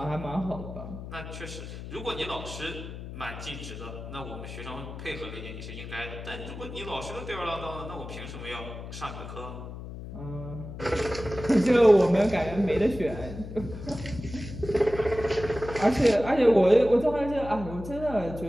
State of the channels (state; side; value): noise; left; hum, 10 dB below the sound